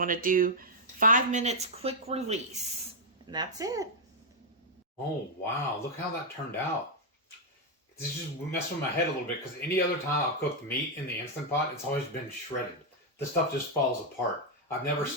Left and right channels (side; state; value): both; normal; correlation -0.02